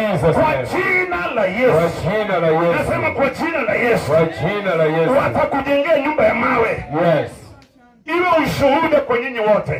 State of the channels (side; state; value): both; identical; correlation 1.00